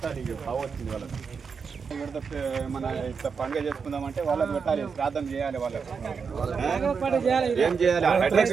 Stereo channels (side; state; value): left; quieter; 5.7 dB